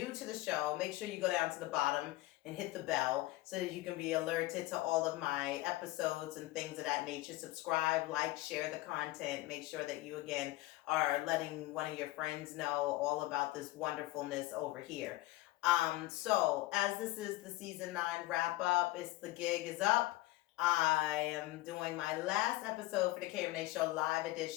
to the show, make sure you go down to the bottom and hit the bell so that you can be alerted to all of my episodes and things of that nature. Subscribe, like, share the content. Make sure that you, again, are letting one of your friends know all about this wonderfulness over here. So as this is the season 9 wrap up, the gig is up. I am doing my last episode for the KReneShow live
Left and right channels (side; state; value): right; quieter; 18.5 dB